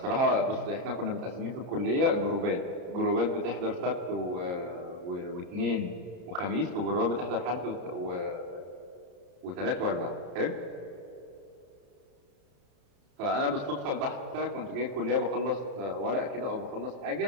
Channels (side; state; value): left; late; 33 ms